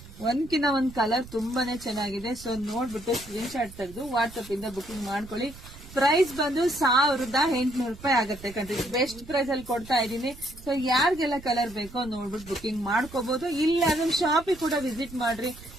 ಒಂದ್ಕಿನ್ನ ಒಂದ್ ಕಲರ್ ತುಂಬಾನೇ ಚೆನ್ನಾಗಿದೆ. ಸೊ ನೋಡ್ಬಿಟ್ಟು ಸ್ಕ್ರೀನ್ ಶಾಟ್ ತೆಗೆದು ವಾಟ್ಸ್ಆಪ್ ಇಂದ ಬುಕಿಂಗ್ ಮಾಡ್ಕೊಳ್ಳಿ. ಪ್ರೈಸ್ ಬಂದು 1800 ರೂಪಾಯಿ ಆಗುತ್ತೆ ಕಣ್ರಿ. ಬೆಸ್ಟ್ ಪ್ರೈಸ್ ಅಲ್ಲಿ ಕೊಡ್ತಾ ಇದೀನಿ. ಸೊ ಯಾರಿಗೆಲ್ಲ ಕಲರ್ ಬೇಕೋ ನೋಡ್ಬಿಟ್ಟು ಬುಕಿಂಗ್ ಮಾಡ್ಕೋಬಹುದು. ಇಲ್ಲ ಅದನ್ನ ಶಾಪಿಗೆ ಕೂಡ ವಿಸಿಟ್ ಮಾಡ್ರಿ.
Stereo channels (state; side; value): noise; right; rumble, 18 dB below the sound